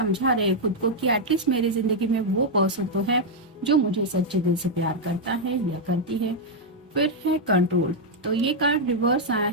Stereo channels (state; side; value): normal; both; correlation -0.02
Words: रहे खुद को कि एटलीस्ट मेरी जिंदगी में वो पर्सन तो है जो मुझे सच्चे दिल से प्यार करता है या करती है। फिर है कंट्रोल, तो ये कार्ड रिवर्स आया